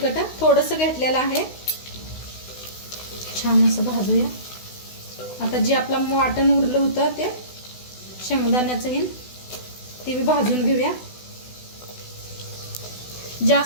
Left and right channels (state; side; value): late; right; 16 ms